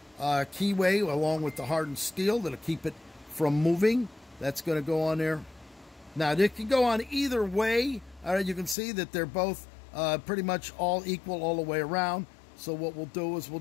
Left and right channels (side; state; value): right; drops out; at 8.8 s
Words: keyway along with the hardened steel that'll keep it from moving. That's going to go on there. Now, it can go on either way. All right, you can see that they're both pretty much all equal all the way around. So what we'll do is we'll